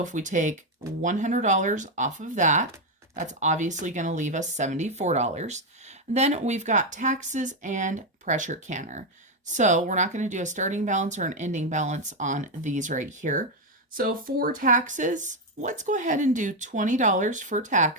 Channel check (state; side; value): normal; both; correlation 0.05